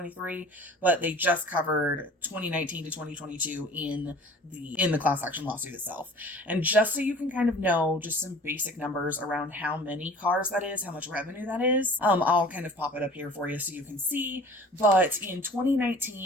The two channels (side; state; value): both; normal; correlation 0.45